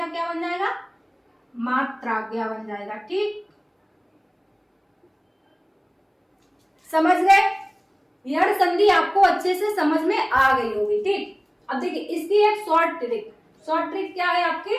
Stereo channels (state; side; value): identical; both; correlation 1.00